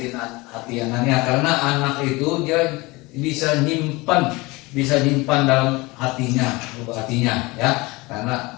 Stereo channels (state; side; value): quieter; right; 23.2 dB